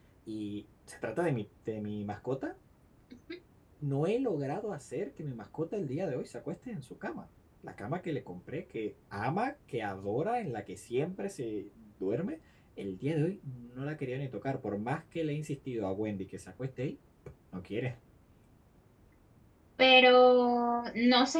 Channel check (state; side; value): identical; both; correlation 1.00